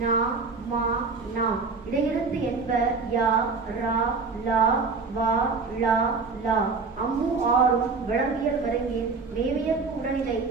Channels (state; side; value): quieter; left; 4.5 dB